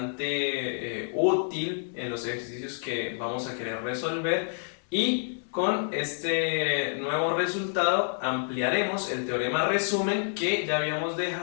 útil en los ejercicios que vamos a querer resolver, y con este nuevo resultado ampliaremos el teorema resumen que ya habíamos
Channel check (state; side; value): silent; right; digital silence